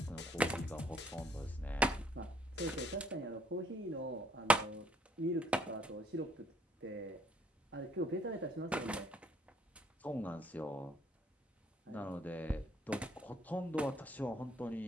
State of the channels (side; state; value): both; normal; correlation 0.65